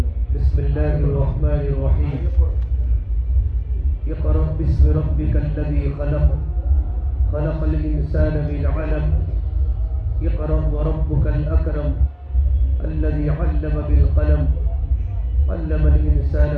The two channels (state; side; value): identical; both; correlation 1.00